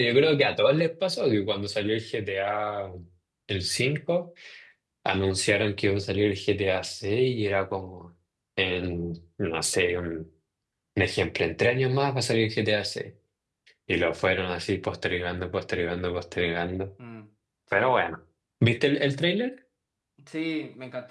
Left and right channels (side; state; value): both; identical; correlation 1.00